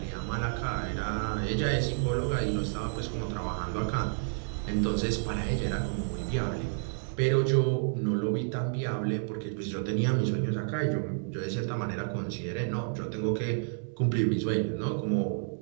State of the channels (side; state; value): left; silent; 58 dB below the other